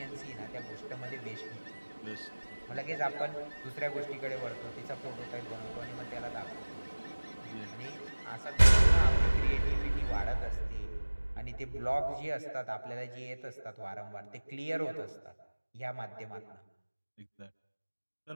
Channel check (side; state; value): both; inverted; correlation -1.00